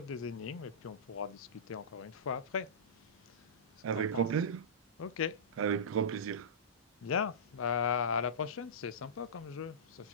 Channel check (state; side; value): normal; both; correlation -0.19